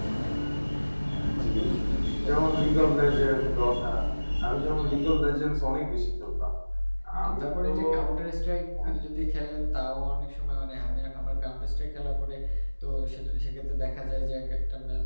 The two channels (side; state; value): both; inverted; correlation -1.00